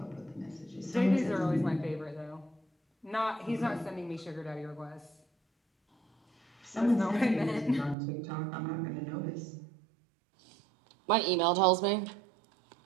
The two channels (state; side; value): drops out; left; at 8.0 s